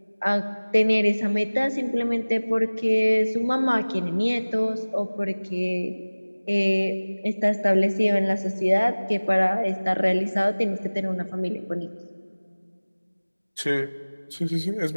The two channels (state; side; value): inverted; both; correlation -1.00